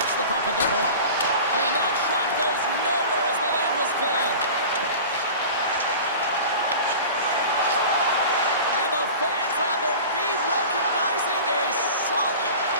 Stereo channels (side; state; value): both; inverted; correlation -0.37